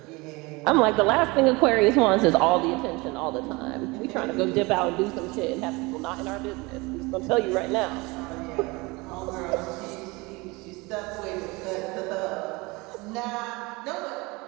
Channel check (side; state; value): left; quieter; 24.5 dB